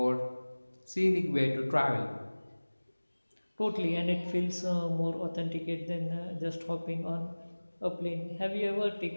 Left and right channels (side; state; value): both; inverted; correlation -1.00